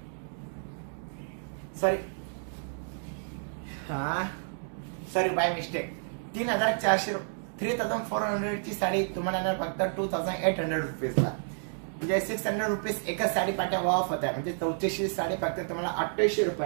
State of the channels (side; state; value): left; silent; digital silence